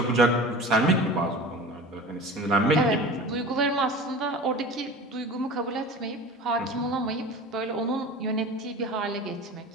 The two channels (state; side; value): normal; both; correlation 0.35